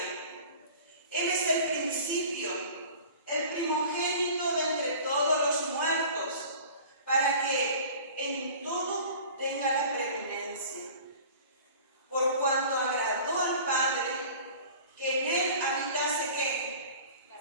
Él es el principio, el primogénito de entre todos los muertos, para que en todo tenga la preeminencia. Por cuanto agradó al Padre que en Él habitase ¿qué?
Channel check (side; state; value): both; inverted; correlation -0.43